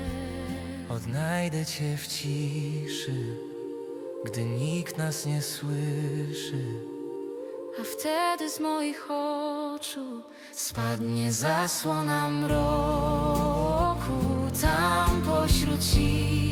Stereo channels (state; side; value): identical; both; correlation 1.00